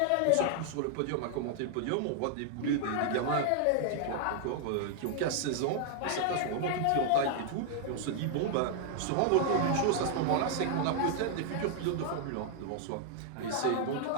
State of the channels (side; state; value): both; different; correlation 0.00